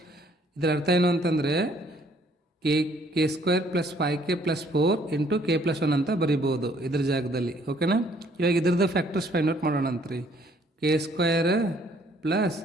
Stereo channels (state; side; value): normal; both; correlation 0.63